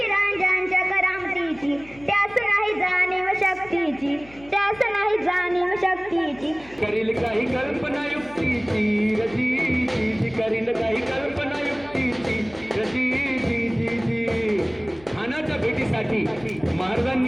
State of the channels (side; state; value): left; noise; hum, 22 dB below the sound